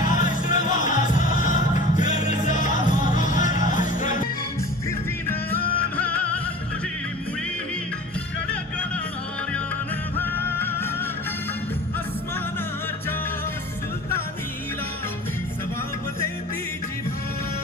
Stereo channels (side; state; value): both; normal; correlation 0.39